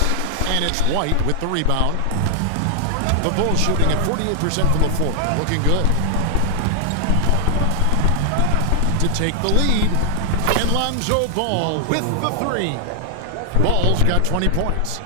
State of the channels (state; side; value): different; both; correlation 0.00